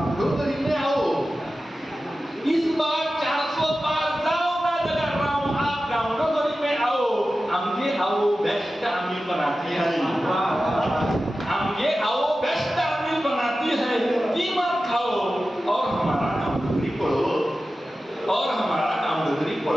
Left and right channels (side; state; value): both; normal; correlation 0.94